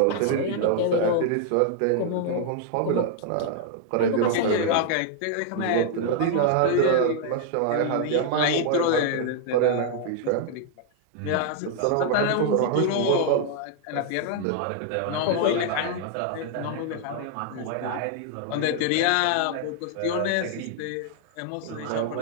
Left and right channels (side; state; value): both; different; correlation 0.00